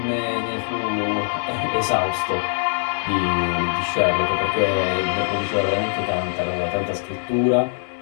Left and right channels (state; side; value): silent; right; digital silence